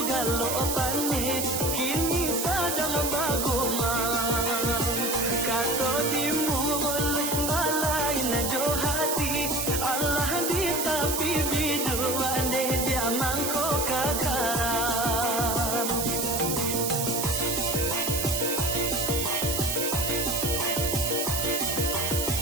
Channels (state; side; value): noise; right; hiss, 1 dB below the sound